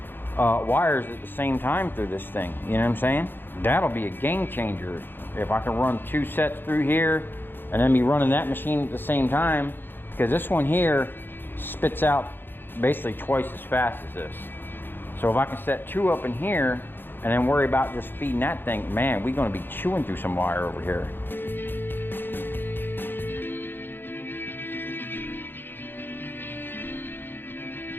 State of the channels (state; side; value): late; right; 0.099 ms